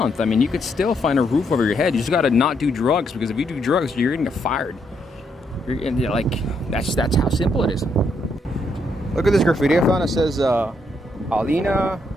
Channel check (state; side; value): normal; both; correlation 0.75